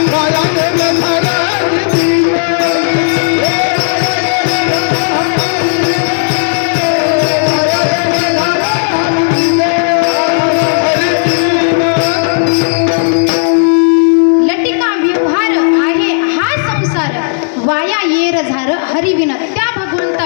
हरिविन, त्या भगवंता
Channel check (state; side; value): silent; right; digital silence